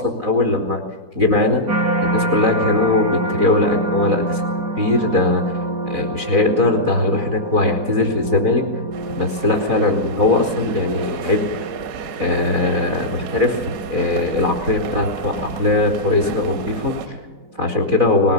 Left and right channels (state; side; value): late; left; 4.0 ms